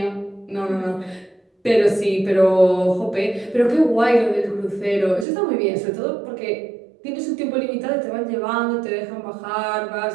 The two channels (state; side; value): drops out; left; at 5.2 s